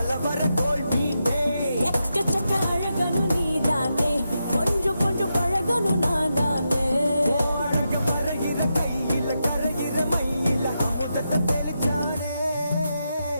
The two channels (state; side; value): inverted; both; correlation -0.86